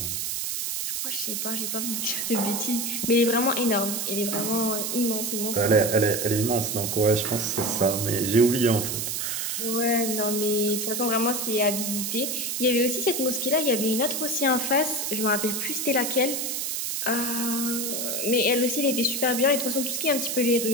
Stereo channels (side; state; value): right; noise; hiss, 2 dB below the sound